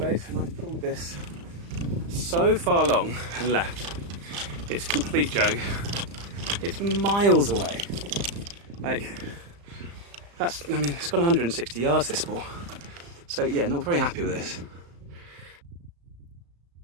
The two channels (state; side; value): late; left; 35 ms